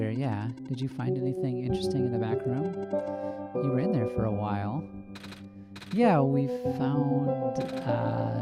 yeah. Did you find anything interesting in the back room? You were in there for a while. Yeah, we found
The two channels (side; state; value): both; identical; correlation 1.00